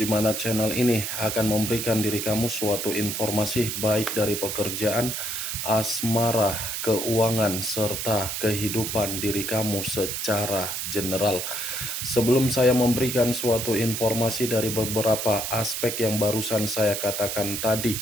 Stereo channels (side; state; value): right; noise; hiss, 3 dB below the sound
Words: mana channel ini akan memberikan diri kamu suatu informasi baik dari pekerjaan, asmara, keuangan, serta kehidupan diri kamu secara general. Sebelum saya memberikan suatu informasi dari beberapa aspek yang barusan saya katakan tadi,